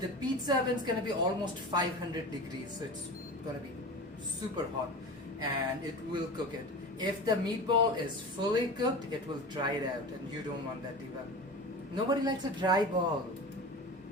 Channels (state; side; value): normal; both; correlation 0.31